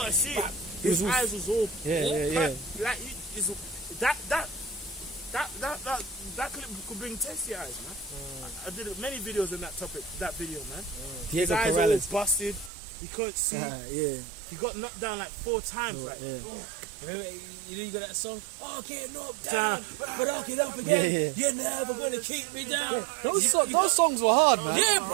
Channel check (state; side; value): drops out; left; at 12.7 s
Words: see it. He was His all- eyes was all Yeah. like that clip could bring tears to your eyes, man. I did many videos on that topic, that video, man. His Diego eyes all Corales. busted. He couldn't see. Yeah. He got knocked down like 4 times. Like, Yeah. Remember, you got that song? Oh, I can't knock Down. down, but I'll get up again. Yeah. You're never gonna keep me down. Those songs were hard, man. Yeah,